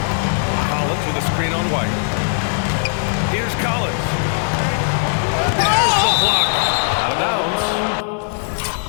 Collins with a screen on White. Here's Collins. There's the block. Out of bounds.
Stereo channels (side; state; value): right; silent; digital silence